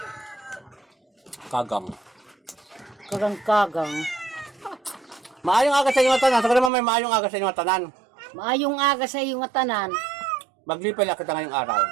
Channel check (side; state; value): left; drops out; at 6.7 s